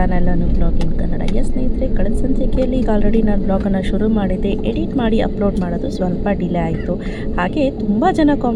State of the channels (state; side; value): identical; both; correlation 1.00